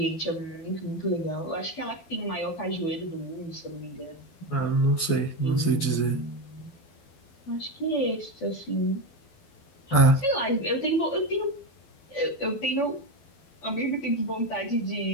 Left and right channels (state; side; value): late; right; 12 ms